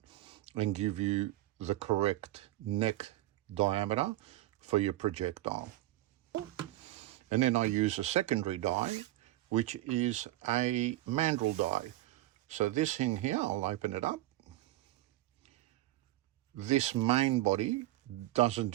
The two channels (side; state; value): left; quieter; 16.1 dB